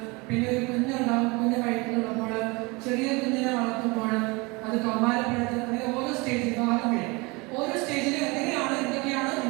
പിന്നെ ഒരു കുഞ്ഞുണ്ടാവും, കുഞ്ഞ് വയറ്റിലുള്ളപ്പോൾ, ചെറിയ കുഞ്ഞിനെ വളർത്തുമ്പോൾ, അത് കൗമാരപ്പെടുത്തുന്ന അങ്ങനെ ഓരോ സ്റ്റേജിൽ ഓരോ സ്റ്റേജിലും എന്തൊക്കെയാണ്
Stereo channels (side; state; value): left; quieter; 26.3 dB